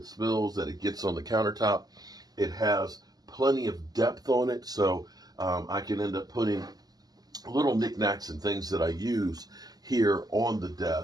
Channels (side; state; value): left; late; 0.19 ms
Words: spills, that it gets on the countertop. It has plenty of depth on it, so I can end up putting little knickknacks and things that I use here on the